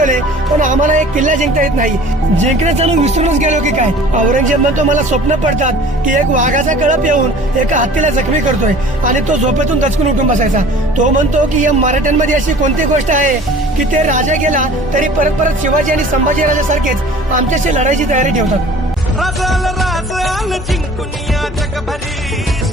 पण आम्हाला एक किल्ला जिंकता येत नाही. जिंकणं चालून विसरूनच गेलो की काय. औरंगजेब म्हणतो, मला स्वप्न पडतात की एक वाघाचा कळप येऊन एका हत्तीला जखमी करतोय आणि तो झोपेतून दचकून उठून बसायचा. तो म्हणतो की या मराठ्यांमध्ये अशी कोणती गोष्ट आहे की ते राजा गेला तरी परत परत शिवाजी आणि संभाजी राजासारखेच आमच्याशी लढायची तयारी ठेवतात. राज आलं जिंकून या जगभरी,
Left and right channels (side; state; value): both; normal; correlation 0.46